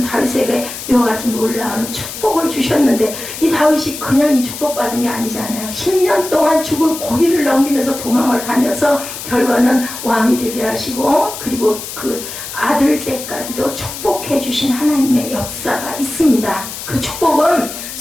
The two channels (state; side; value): noise; left; hiss, 9 dB below the sound